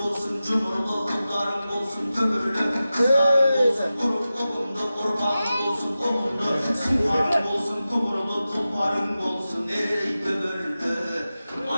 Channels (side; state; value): both; inverted; correlation -0.94